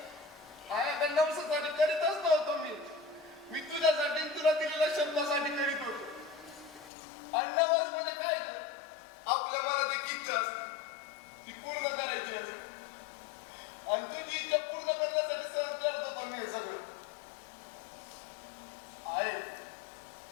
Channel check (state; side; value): drops out; right; at 6.9 s